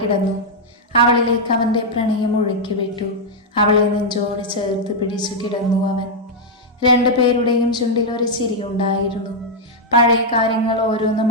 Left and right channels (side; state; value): both; normal; correlation -0.03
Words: അവളിലേക്ക് അവന്റെ പ്രണയം ഒഴുക്കി വിട്ടു. അവളെ നെഞ്ചോട് ചേർത്ത് പിടിച്ചു കിടന്നു അവൻ. 2 പേരുടെയും ചുണ്ടിൽ ഒരു ചിരിയുണ്ടായിരുന്നു. പഴയ കാര്യങ്ങൾ ഓരോന്നും